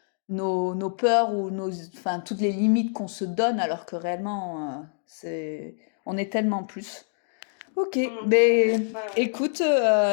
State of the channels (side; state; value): right; silent; digital silence